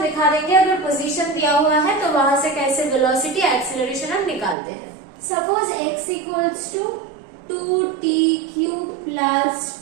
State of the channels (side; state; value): left; drops out; at 4.5 s